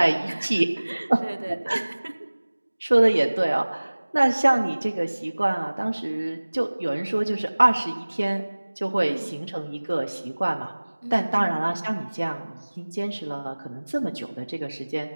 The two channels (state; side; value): inverted; both; correlation -1.00